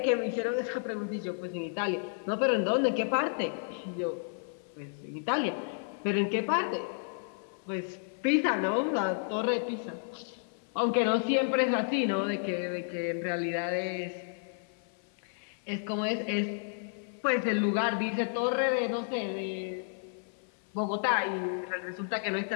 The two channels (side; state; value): right; silent; 56 dB below the other